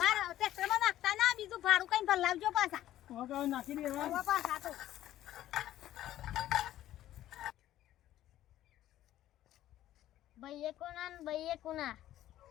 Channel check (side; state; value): right; quieter; 13.3 dB